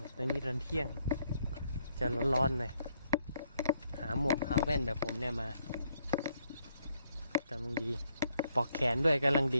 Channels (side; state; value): both; inverted; correlation -0.73